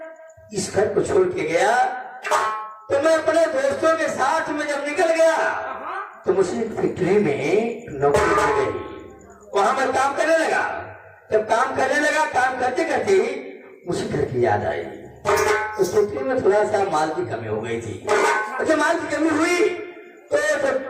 इस घर को छोड़ के गया तो मैं अपने दोस्तों के साथ में जब निकल गया तो मुझे फैक्ट्री में नौकरी मिल गई। वहां मैं काम करने लगा। जब काम करने लगा, काम करते करते मुझे घर की याद आई। उस फैक्ट्री में थोड़ा सा माल की कमी हो गई थी। और जब माल की कमी हुई तो जब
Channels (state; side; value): identical; both; correlation 1.00